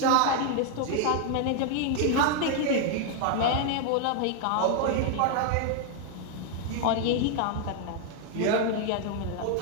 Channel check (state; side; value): different; both; correlation 0.00